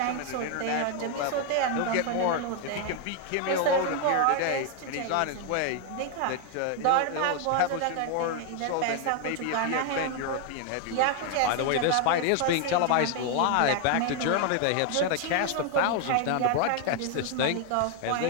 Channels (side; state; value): both; different; correlation 0.01